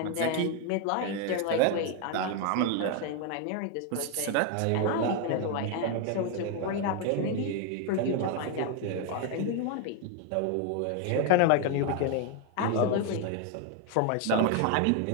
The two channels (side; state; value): both; different; correlation 0.01